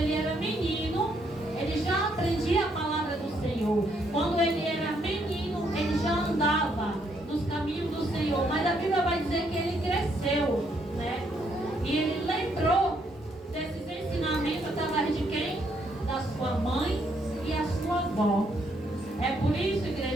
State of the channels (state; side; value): normal; both; correlation 0.73